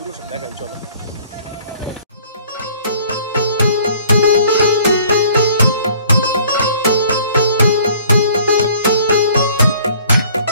সব দেখাই, চলো।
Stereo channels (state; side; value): inverted; both; correlation -0.55